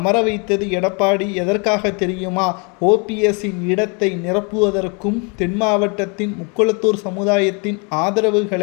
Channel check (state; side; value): quieter; right; 33.5 dB